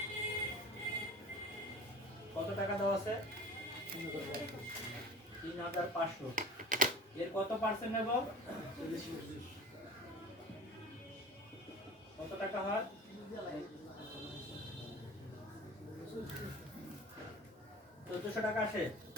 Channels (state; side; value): normal; both; correlation 0.40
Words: কত টাকা দেওয়া আছে, 3500। এর কত পার্সেন্ট নেব, কত টাকা হয়, 1400 টাকা আসে।